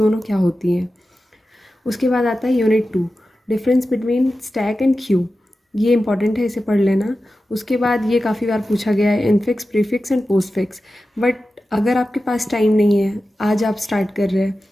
क्या होती हैं। उसके बाद आता है unit 2, difference between stack and Q. ये इंपॉर्टेंट है, इसे पढ़ लेना। उसके बाद ये काफ़ी बार पूछा गया है infix, prefix and postfix. But अगर आपके पास टाइम नहीं है, आज आप स्टार्ट कर रहे हैं,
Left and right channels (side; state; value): both; normal; correlation 0.93